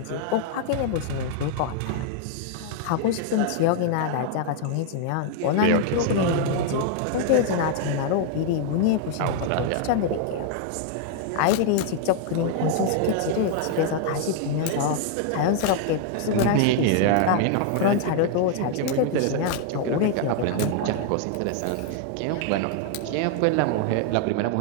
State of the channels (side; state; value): both; different; correlation 0.00